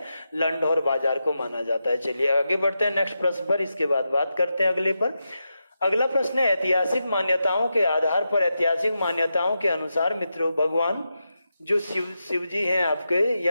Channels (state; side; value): inverted; both; correlation -0.88